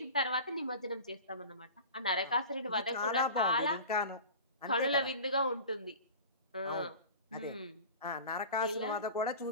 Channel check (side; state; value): both; inverted; correlation -0.37